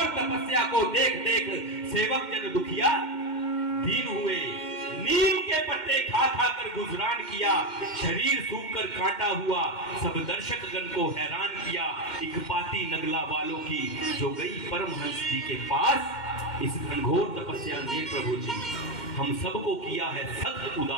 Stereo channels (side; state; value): right; late; 2.1 ms